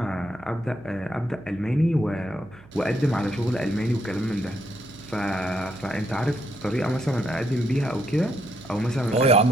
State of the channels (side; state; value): right; noise; hum, 23 dB below the sound